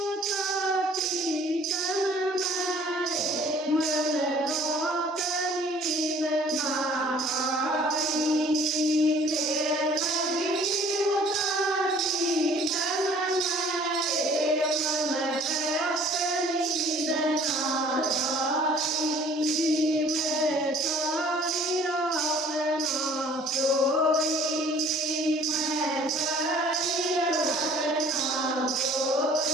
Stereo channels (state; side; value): normal; both; correlation 0.54